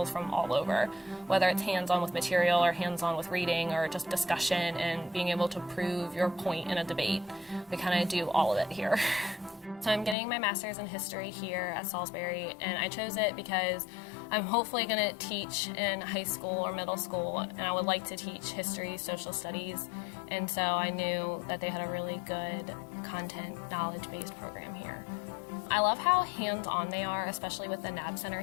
from all over, whether it's hands-on with material or hands-on with reading or just discussion and being able to prove your point in a debate. We kind of do all of it here. So I'm getting my master's in history here at Salisbury, and I chose it because I'm hopefully going to teach in high school or middle school, and I would like to teach history, social studies, and so I knew that they had a really good content, knowledge-based program here. I love how hands-on they are, especially with the NAB Center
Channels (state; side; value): drops out; right; at 10.2 s